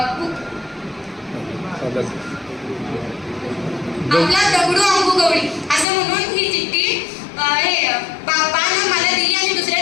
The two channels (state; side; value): drops out; right; at 5.9 s